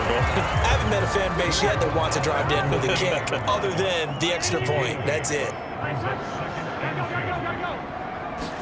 goal. I haven't met a fan base yet that wants to drive to end with a kick, other than the extra point. That's it.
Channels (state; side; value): identical; both; correlation 1.00